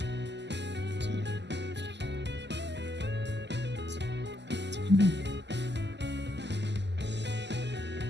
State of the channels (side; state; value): left; late; 0.50 ms